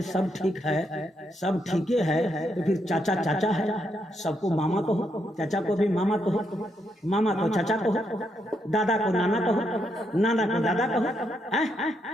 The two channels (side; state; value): both; normal; correlation 0.79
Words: سب ٹھیک ہے، سب ٹھیک ہے تو پھر چاچا چاچا ہے. سب کو ماما کہو، چاچا کو بھی ماما کہو، ماما کو چاچا کہو، دادا کو نانا کہو، نانا کو دادا کہو.